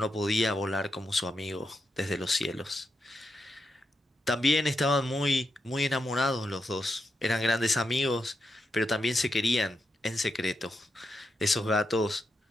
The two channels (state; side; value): normal; both; correlation 0.85